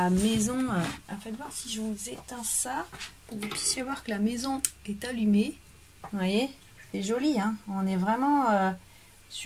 maison. Faites voir si je vous éteins ça, pour que vous puissiez voir que la maison est allumée. Vous voyez, c'est joli, hein. On est vraiment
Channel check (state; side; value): identical; both; correlation 1.00